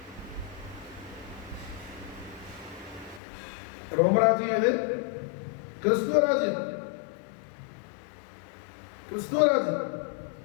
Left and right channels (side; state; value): right; drops out; at 3.2 s